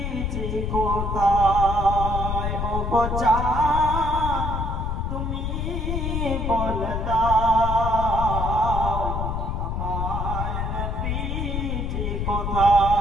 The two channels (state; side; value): noise; left; rumble, 2 dB below the sound